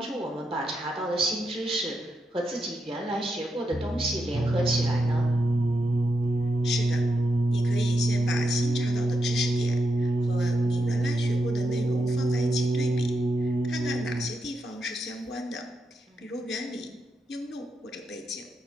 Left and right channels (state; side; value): normal; both; correlation 0.84